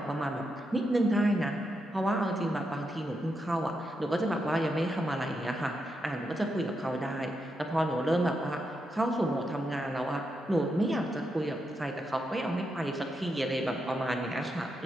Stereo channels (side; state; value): both; normal; correlation 0.84